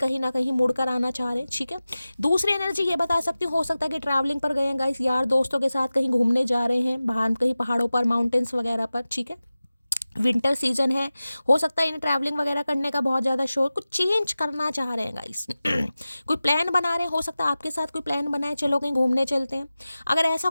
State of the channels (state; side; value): inverted; both; correlation -0.96